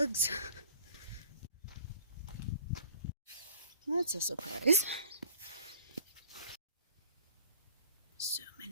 That's a surprise. So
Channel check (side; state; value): both; inverted; correlation -0.53